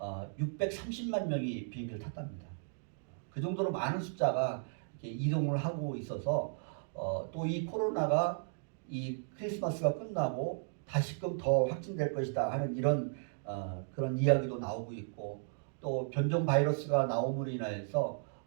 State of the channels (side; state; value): left; silent; digital silence